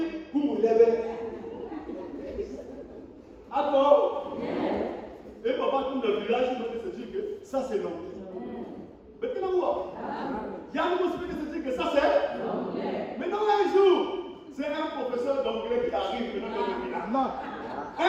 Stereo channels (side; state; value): both; identical; correlation 1.00